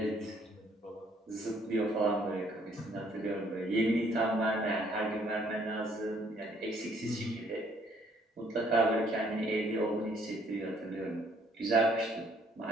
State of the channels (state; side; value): normal; both; correlation 0.64